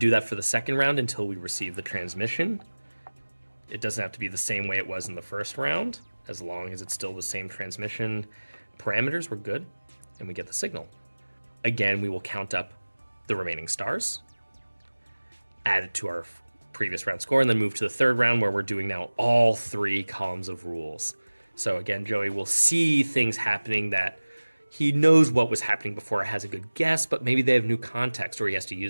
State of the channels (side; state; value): both; inverted; correlation -1.00